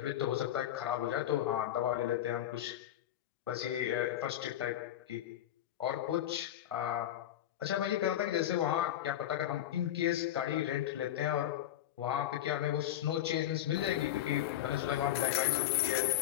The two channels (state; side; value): quieter; right; 12.2 dB